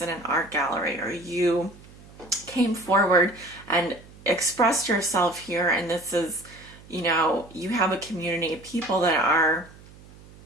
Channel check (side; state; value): right; noise; hum, 22 dB below the sound